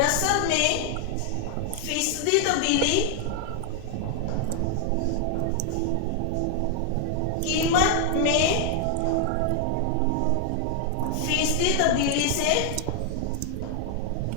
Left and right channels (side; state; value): both; different; correlation 0.00